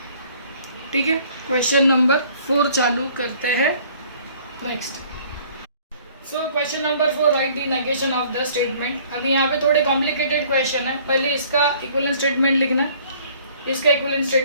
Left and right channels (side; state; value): both; inverted; correlation -0.56